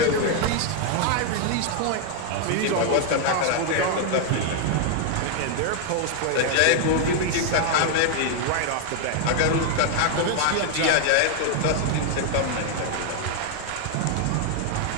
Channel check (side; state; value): both; different; correlation 0.00